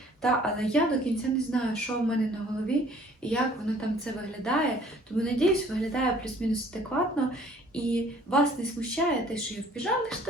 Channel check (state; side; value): normal; both; correlation 0.55